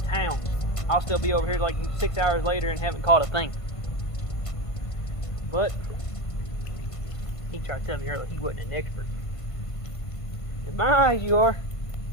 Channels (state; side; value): late; right; 1.5 ms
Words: I'll still be over here like 6 hours later and haven't caught a thing. But he tried to tell me earlier he wasn't an expert. In my eyes, you are.